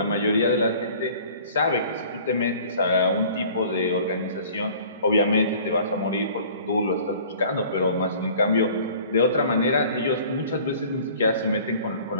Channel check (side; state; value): both; inverted; correlation -0.49